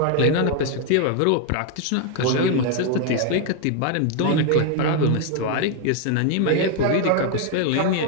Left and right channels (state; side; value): different; both; correlation 0.01